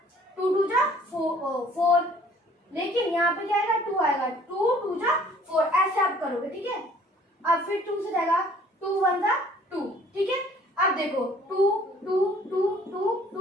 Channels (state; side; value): normal; both; correlation 0.55